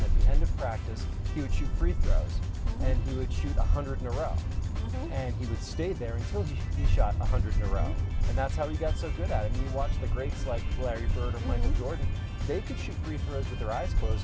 At the end of practice, he would shoot free throws, and he would shoot 100 in a row. And he would stay there until he shot 100 in a row. And that's how he got so good at it. I mean, you watch the greats like Larry Bird or Michael Jordan, they could shoot free throws with their eyes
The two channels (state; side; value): identical; both; correlation 1.00